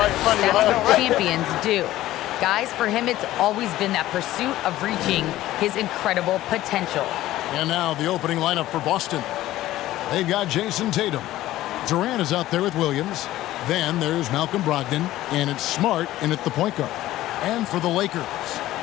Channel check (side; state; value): right; quieter; 15.2 dB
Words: what champions do. Guys, for him, it's always been that pursuit of reaching his incredible potential. And now the opening lineup for Boston. They've got Jason Tatum. Durant is out there with Williams. Then there's Malcolm Brogdon, and it's Smart in at the point guard. And for the Lakers,